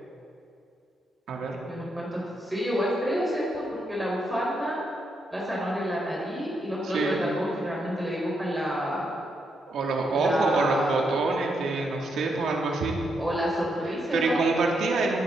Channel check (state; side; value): normal; both; correlation 0.79